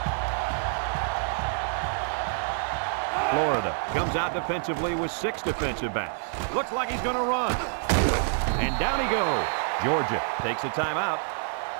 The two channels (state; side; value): silent; left; 60 dB below the other